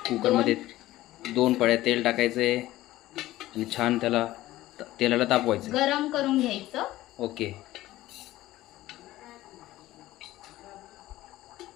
कुकरमध्ये 2 पळ्या तेल टाकायचे आणि छान तेलाला तापवायचं, गरम करून घ्यायचं. ओके.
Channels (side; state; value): right; quieter; 16.0 dB